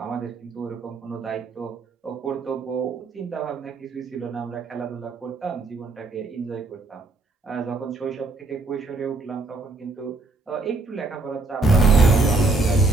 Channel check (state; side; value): quieter; left; 3.3 dB